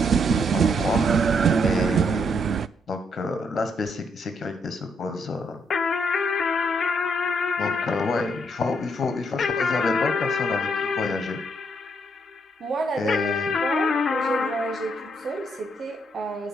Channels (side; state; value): both; normal; correlation 0.74